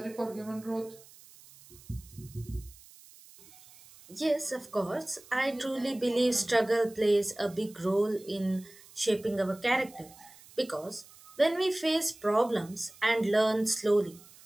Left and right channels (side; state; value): right; noise; hiss, 23 dB below the sound